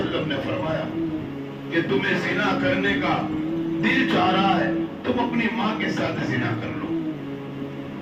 نے فرمایا کہ تمہیں زنا کرنے کا دل چاہ رہا ہے، تم اپنی ماں کے ساتھ زنا کر لو۔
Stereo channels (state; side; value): identical; both; correlation 1.00